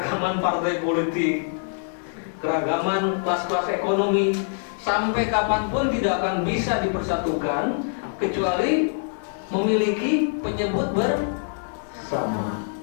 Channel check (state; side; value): silent; right; digital silence